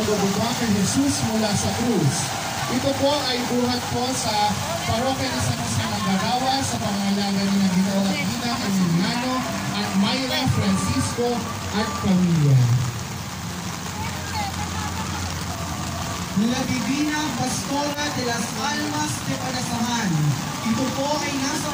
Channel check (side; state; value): both; identical; correlation 1.00